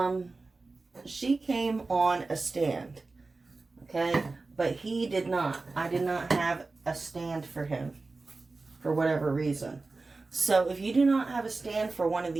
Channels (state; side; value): quieter; left; 3.6 dB